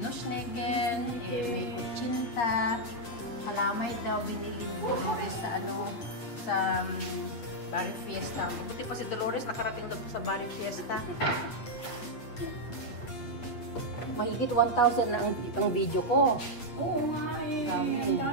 No snake. May kutsinta. Kalamay daw binili ni Dolores sa sa Barrio Fiesta. Buti pa si Dolores nakarating na sa Barrio Fiesta. Mahigit 1,000 na ang video ko. Oo nga eh. Dami.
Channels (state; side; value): late; right; 8.8 ms